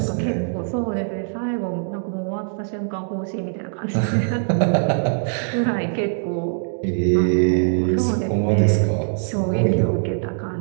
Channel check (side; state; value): left; silent; digital silence